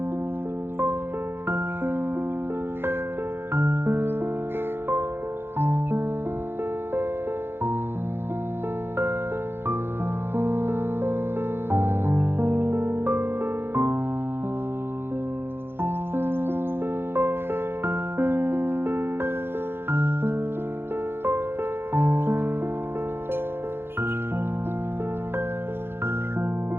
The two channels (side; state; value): left; late; 0.11 ms